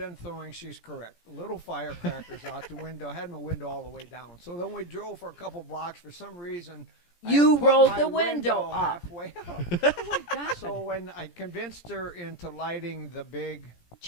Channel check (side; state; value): right; late; 17 ms